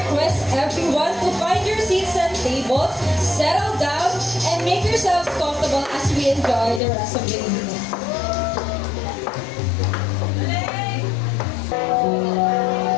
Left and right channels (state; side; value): drops out; right; at 6.8 s